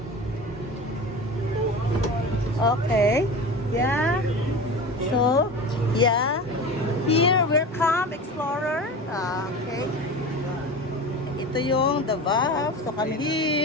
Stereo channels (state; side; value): normal; both; correlation 0.31